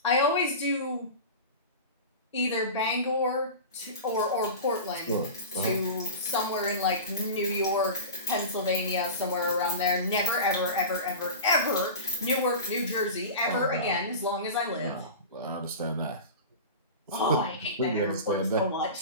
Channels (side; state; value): both; inverted; correlation -0.30